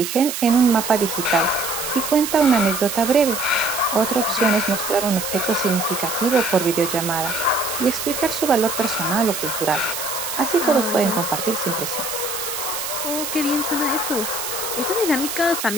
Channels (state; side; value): noise; right; hiss, 5 dB below the sound